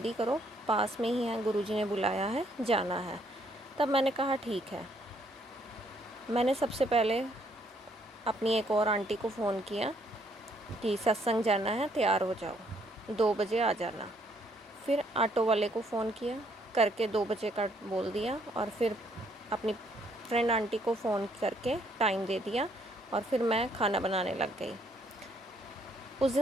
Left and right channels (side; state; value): both; normal; correlation 0.69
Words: करो, पास में ही है, गुरुजी ने बुलाया है, जाना है। तब मैंने कहा ठीक है। मैंने सबसे पहले अपनी एक और आंटी को फ़ोन किया कि सत्संग जाना है, तैयार हो जाओ, 2 बजे आ जाना। फिर ऑटो वाले को फ़ोन किया, करके 2 बजे का बोल दिया और फिर अपनी फ्रेंड आंटी को फ़ोन करके टाइम दे दिया और फिर मैं खाना बनाने लग गई। उस